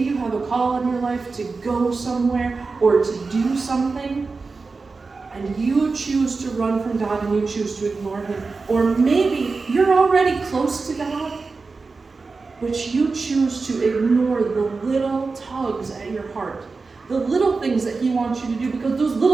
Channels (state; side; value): quieter; left; 4.2 dB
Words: you have a call in your life to go somewhere or to do something, and you choose to run from God and you choose to ignore him. Or maybe you're already close to God, but you choose to ignore the little tugs at your heart, the little things that he wants you to do, because those